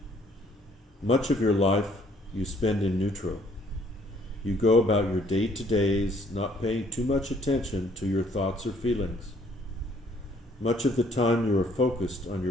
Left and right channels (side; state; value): both; normal; correlation 0.63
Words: Much of your life you spend in neutral. You go about your day-to-days, not paying too much attention to your thoughts or feelings. Much of the time you are focused on